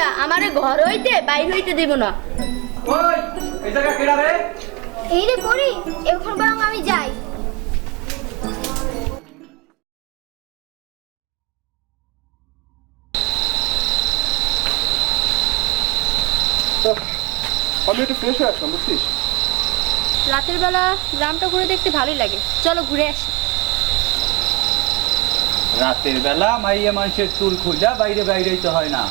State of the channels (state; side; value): quieter; left; 27.1 dB